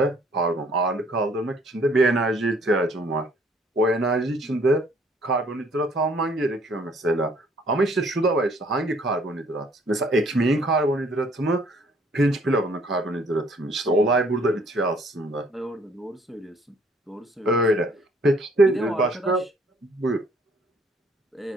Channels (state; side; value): normal; both; correlation 0.61